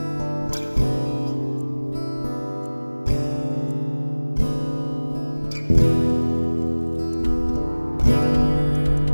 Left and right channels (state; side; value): inverted; both; correlation -1.00